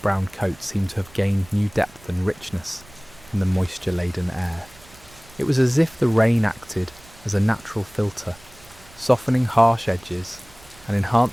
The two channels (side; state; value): right; noise; rumble, 24 dB below the sound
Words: coats seemed to have gained new depth and richness in the moisture-laden air. It was as if the rain acted as a natural filter, softening harsh edges and